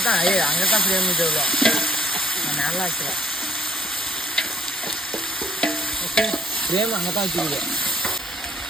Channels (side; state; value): both; normal; correlation 0.62